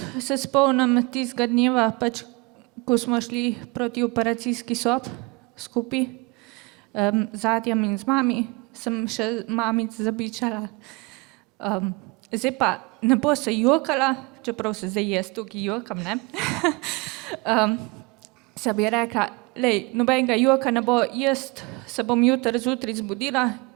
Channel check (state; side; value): quieter; left; 26.5 dB